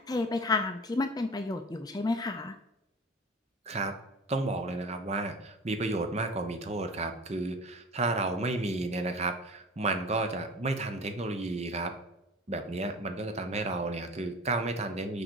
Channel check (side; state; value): both; normal; correlation 0.37